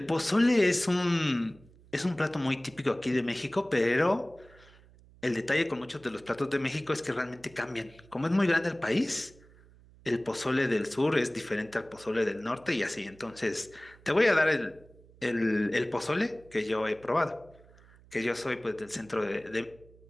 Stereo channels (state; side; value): noise; right; hum, 25 dB below the sound